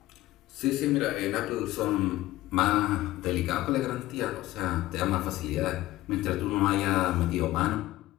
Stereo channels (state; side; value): quieter; right; 16.5 dB